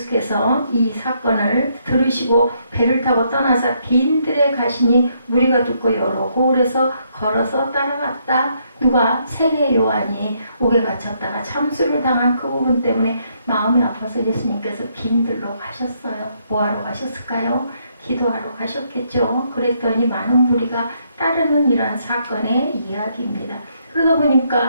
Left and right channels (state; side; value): inverted; both; correlation -0.73